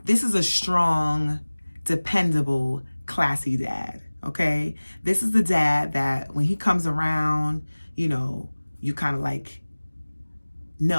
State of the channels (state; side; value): inverted; both; correlation -1.00